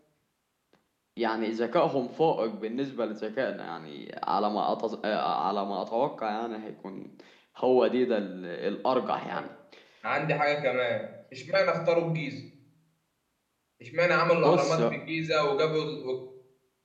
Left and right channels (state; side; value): identical; both; correlation 1.00